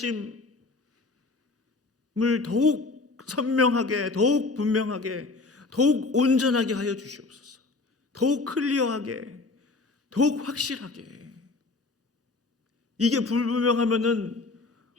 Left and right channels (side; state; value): right; quieter; 3.6 dB